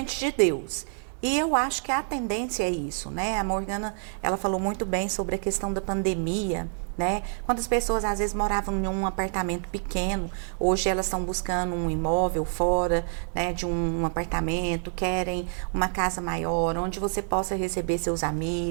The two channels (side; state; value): left; silent; 60 dB below the other